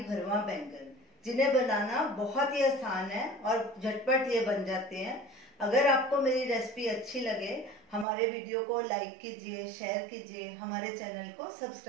बैंगन, जिन्हें बनाना बहुत ही आसान है और झटपट ये बन जाते हैं। अगर आपको मेरी रेसिपी अच्छी लगे, हमारे वीडियो को लाइक कीजिए, शेयर कीजिए, हमारे चैनल को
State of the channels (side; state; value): left; drops out; at 8.1 s